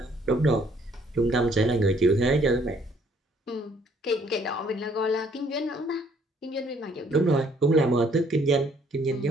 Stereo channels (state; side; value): normal; both; correlation 0.63